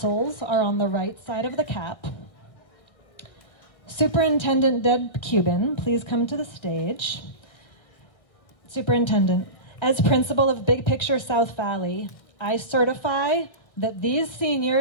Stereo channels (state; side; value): late; right; 1.5 ms